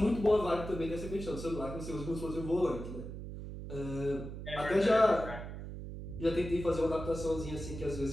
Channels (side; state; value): right; noise; hum, 9 dB below the sound